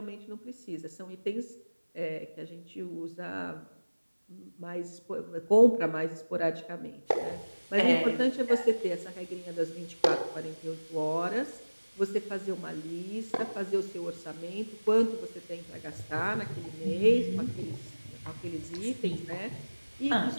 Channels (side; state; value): both; inverted; correlation -1.00